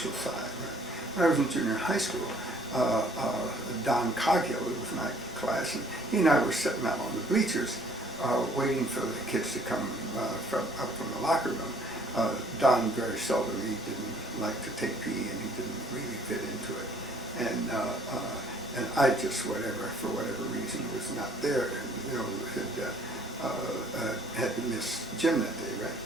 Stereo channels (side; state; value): both; normal; correlation 0.59